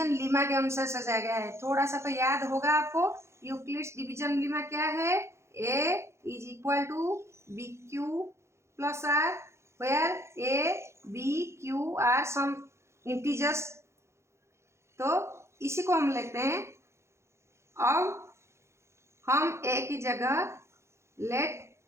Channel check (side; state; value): left; late; 0.13 ms